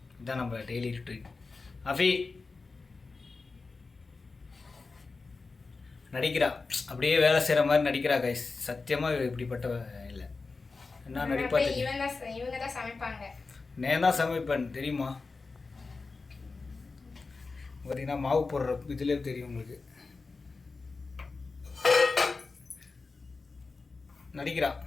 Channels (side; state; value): right; quieter; 4.1 dB